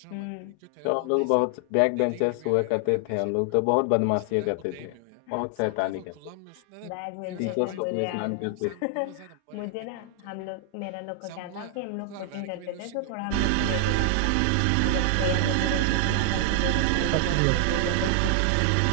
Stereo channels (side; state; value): both; different; correlation 0.00